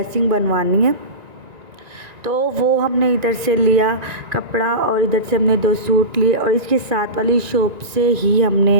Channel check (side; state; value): left; late; 1.9 ms